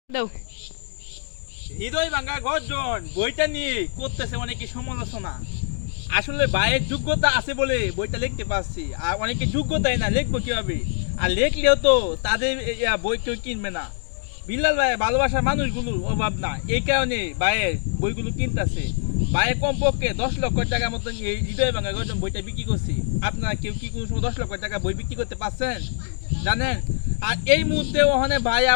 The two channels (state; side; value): silent; right; digital silence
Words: দাও। হৃদয় ভাঙা গর্জন বইটা নিয়ে করতেছে অনেকে সমালোচনা। আসলে ভাইয়ের যোগ্যতা আছে বলে বইটা লিখতে পারছি, আর অনেকে যোগ্যতাই না, লিখবো কিভাবে? আর লিখলেও তো তাদের বই কেউ কিনবে না। বিল্লাল ভাই ভালোবাসার মানুষগুলোর অভাব না, এই কারণে ভাইয়ের বইগুলো কিনতেছে। ভাইয়ের কমপক্ষে 10 লক্ষ টাকার মতন এই হৃদয় ভাঙা গর্জন বইটা বিক্রি করছি। আপনারা কেউ কি কোনো সময় 10 লক্ষ টাকা বই বিক্রি করতে পারছেন জানেন? আর এই মুহূর্তে ওখানে ভাই